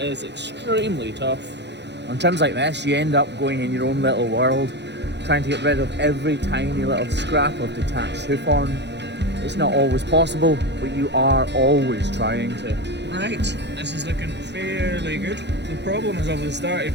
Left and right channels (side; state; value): left; late; 0.50 ms